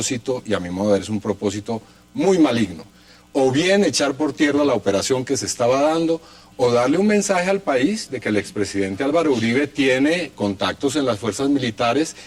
y a mi modo de ver es un propósito muy maligno. O bien echar por tierra la operación que se estaba dando, o darle un mensaje al país de que el expresidente Álvaro Uribe tiene contactos en las fuerzas militares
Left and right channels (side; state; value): both; identical; correlation 1.00